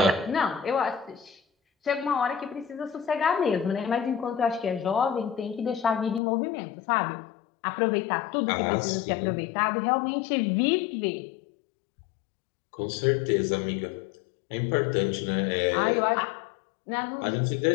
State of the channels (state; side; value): drops out; right; at 6.2 s